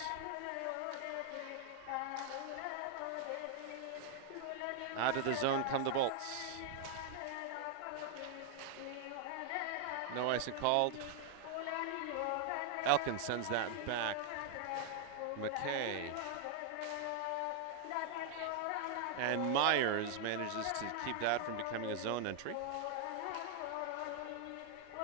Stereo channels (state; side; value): different; both; correlation 0.00